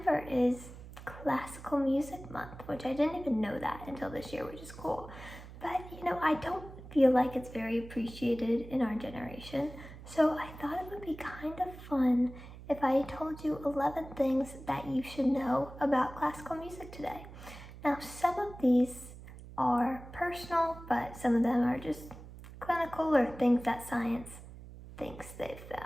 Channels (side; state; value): right; noise; hum, 15 dB below the sound